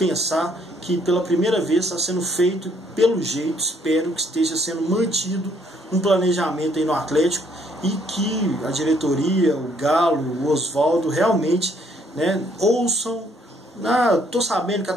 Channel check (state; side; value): normal; both; correlation 0.67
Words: que pela primeira vez está sendo feito, pelo jeito, espero que esteja sendo mantido um planejamento aí no Atlético e que a diretoria, o Galo, o Oswaldo realmente, né, ouçam. Tô sabendo que a